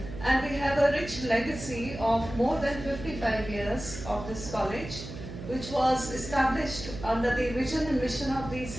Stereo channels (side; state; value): right; noise; hum, 11 dB below the sound